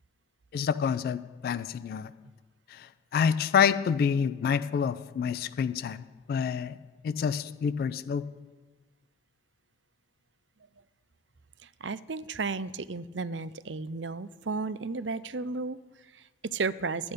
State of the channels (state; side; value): quieter; right; 4.5 dB